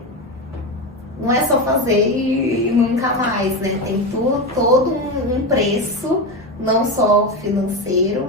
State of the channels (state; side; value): normal; both; correlation 0.17